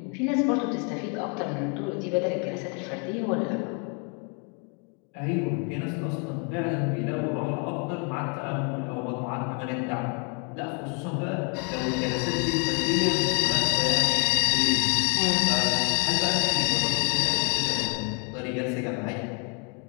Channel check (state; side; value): quieter; right; 37.2 dB